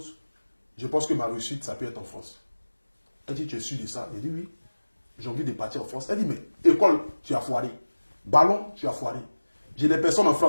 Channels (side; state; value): both; inverted; correlation -1.00